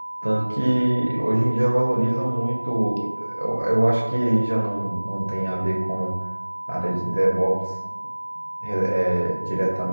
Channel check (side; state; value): both; inverted; correlation -1.00